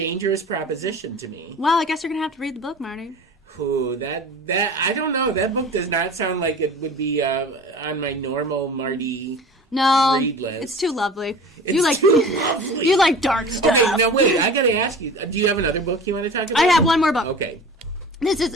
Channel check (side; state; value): both; normal; correlation 0.38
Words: proposition to me. Well, I guess you're going to have to read the book, Marty. Ooh, that I don't know. That book does not sound like it would be on my normal Marty read list. It's too lovely. It's too lovely. You like dark stuff. Okay, now wait. I got to ask you. Do you have another book you want to talk about? I have one more book. Okay. This